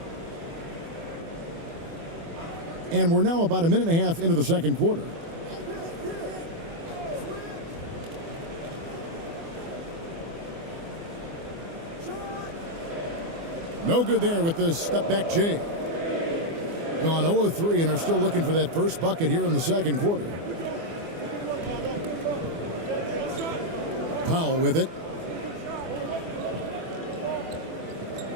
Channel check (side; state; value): left; late; 24 ms